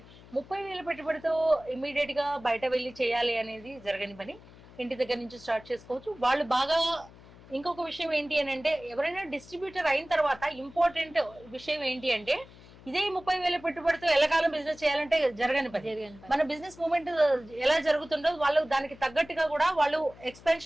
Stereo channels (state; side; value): noise; left; hum, 21 dB below the sound